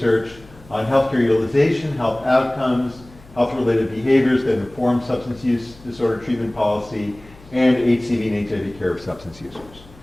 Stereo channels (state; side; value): noise; left; hum, 23 dB below the sound